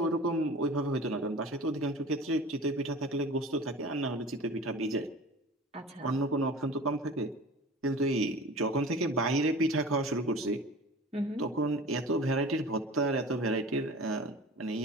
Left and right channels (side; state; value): both; normal; correlation 0.39